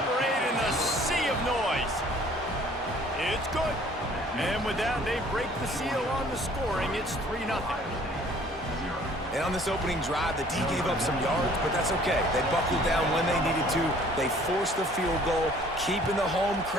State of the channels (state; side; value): normal; both; correlation 0.55